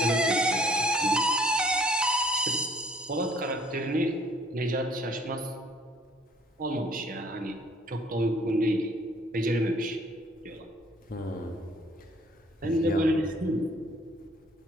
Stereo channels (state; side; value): normal; both; correlation 0.59